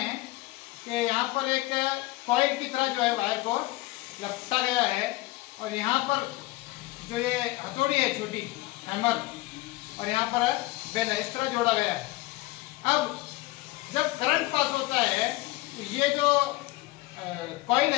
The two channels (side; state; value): right; quieter; 19.6 dB